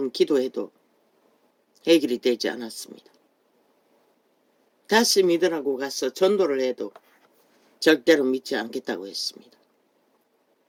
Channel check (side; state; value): both; identical; correlation 1.00